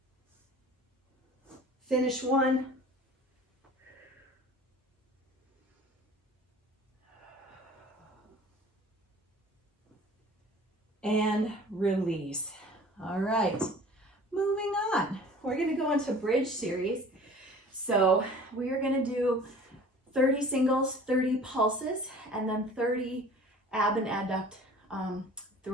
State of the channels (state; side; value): normal; both; correlation 0.45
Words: finish one, and release. All right, moving on. We're gonna go into bridge series. So we are gonna do 30 singles, 30 pulses, and then 30 ab and adduct